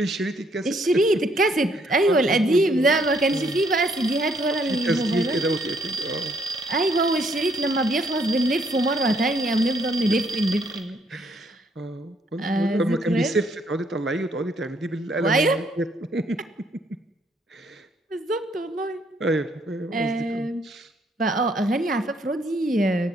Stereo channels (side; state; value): both; normal; correlation 0.69